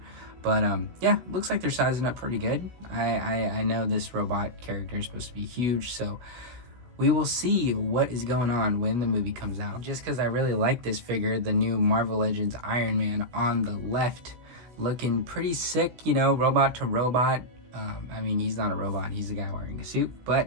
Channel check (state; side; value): late; left; 16 ms